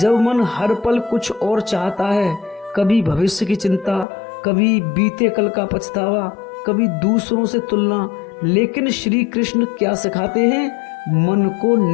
मन हर पल कुछ और चाहता है, कभी भविष्य की चिंता, कभी बीते कल का पछतावा, कभी दूसरों से तुलना, लेकिन श्री कृष्ण क्या सिखाते हैं? मन को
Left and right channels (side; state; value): right; drops out; at 4.0 s